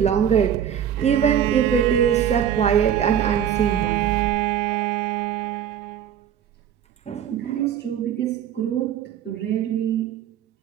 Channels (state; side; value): quieter; left; 9.4 dB